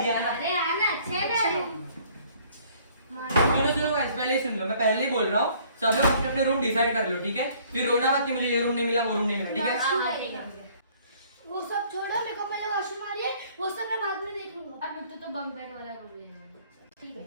आना। अरे आना अच्छे ना सुनो गाइस, पहले ही सुन लो, मैं पहले ही बोल रहा हूँ, सब लोग अपने अपने रूम डिसाइड कर लो, ठीक है? फिर रोना मत कि मुझे ये रूम नहीं मिला, वो रूम नहीं मिला, ठीक है? ठीक है। वो सब छोड़ो, मेरे को पहले वॉशरूम आ रही है, वो सब मैं बाद में देख लूंगा। अब तो बंक बेड वाला रूम ले लेंगे। ठीक है।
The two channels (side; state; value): both; inverted; correlation -0.58